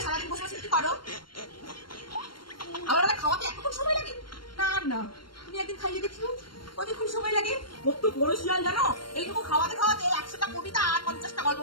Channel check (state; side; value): late; right; 0.72 ms